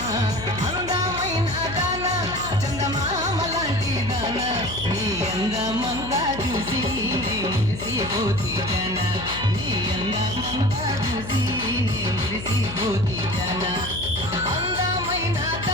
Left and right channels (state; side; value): noise; left; hum, 10 dB below the sound